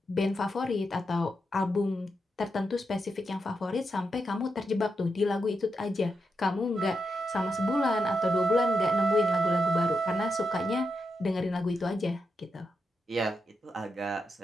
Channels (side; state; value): both; normal; correlation 0.85